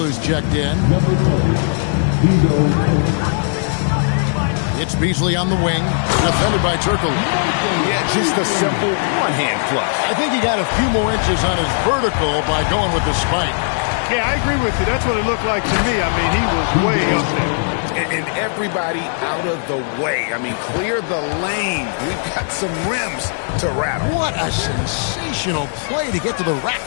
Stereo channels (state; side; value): silent; right; digital silence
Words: checked in. It's Beasley on the wing, defended by Turkle. Yeah, just a simple one-hand flush. I think he got a few more inches on his vertical by going with the spike. Yeah, I agree with you. That's what it looked like to me. I mean, he was way up there. And everybody out of the way. I mean, clear the lane. We've got some rims to rattle. What a sensational play to get to the rack